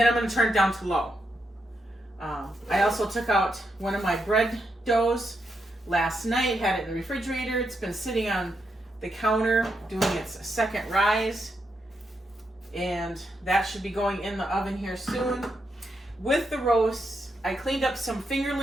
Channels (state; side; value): normal; both; correlation 0.82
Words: I'm gonna turn it down to low. I also took out one of my bread doughs last night, had it in the refrigerator. It's been sitting on the counter doing its second rise, and that should be going in the oven here soon. With the roasts, I cleaned up some